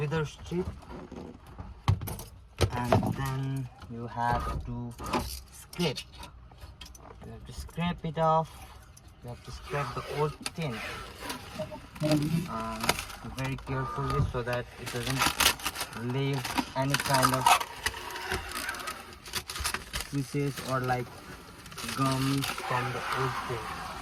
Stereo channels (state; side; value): identical; both; correlation 1.00